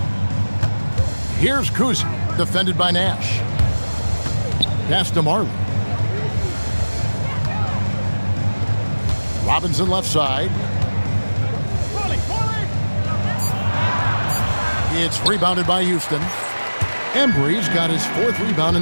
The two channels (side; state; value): both; inverted; correlation -1.00